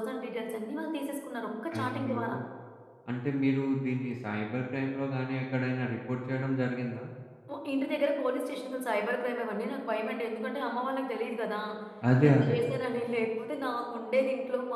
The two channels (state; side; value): identical; both; correlation 1.00